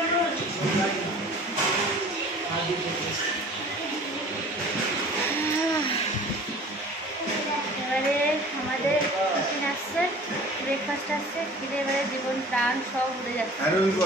এবারে আমাদের টিফিন আসছে, ব্রেকফাস্ট আসছে, খিদে এবারে জীবন প্রাণ সব উড়ে যাচ্ছে।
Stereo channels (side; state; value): both; normal; correlation 0.45